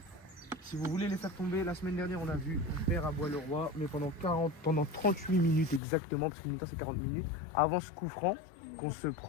Si vous voulez les faire tomber, la semaine dernière, on a vu, on perd à Bois-le-Roi, mais pendant 38 minutes exactement, parce que mi-temps c'est 40 minutes, avant ce coup franc qu'on se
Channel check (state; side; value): drops out; right; at 5.8 s